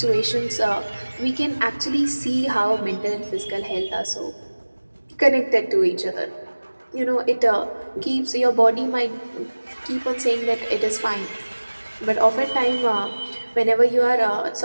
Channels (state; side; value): inverted; both; correlation -1.00